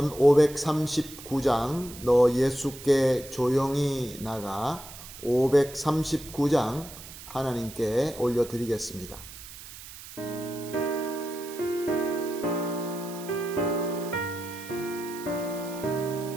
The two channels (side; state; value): right; noise; hiss, 15 dB below the sound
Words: 539장 너 예수께 조용히 나가 539장 하나님께 올려드리겠습니다.